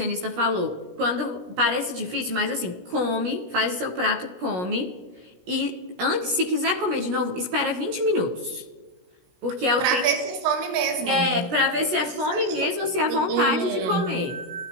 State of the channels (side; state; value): left; late; 16 ms